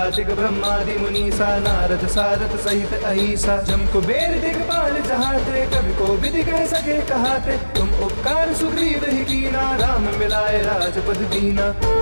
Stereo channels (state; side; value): inverted; both; correlation -1.00